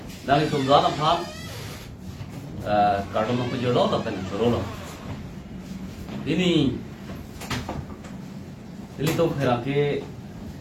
nanti itu anak pan karena memperjual apa nih berolo ini itu kira ke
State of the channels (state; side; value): identical; both; correlation 1.00